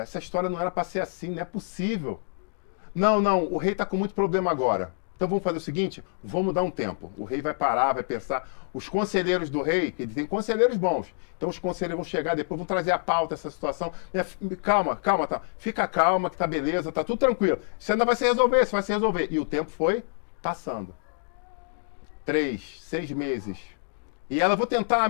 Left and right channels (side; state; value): right; silent; digital silence